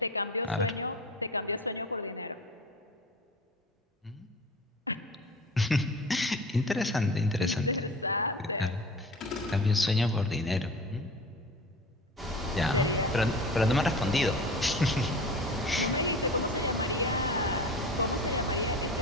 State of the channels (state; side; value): normal; both; correlation 0.36